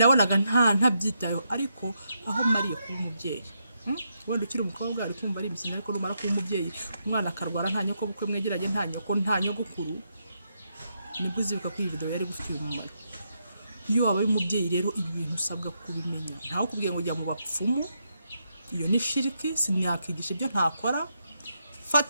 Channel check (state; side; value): inverted; both; correlation -0.81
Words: ntabyitayeho. ariko aho mariye kuba umubyeyi, wenda ukiri umukobwa ari kumva ari imikino, ariko numara kuba umubyeyi umwana akarwara nta nyoko bukwe mwegeranye, nta nyoko nta nyogokuru, nibwo uzibuka ko iyi video yari gufitiye umumaro. iyo waba ari umubyeyi rero ibi bintu usabwa kubimenya. ntawe kubwiye ngo jya mu bapfumu, iyo ni shiriki, simyakigisha ibyo ntakora.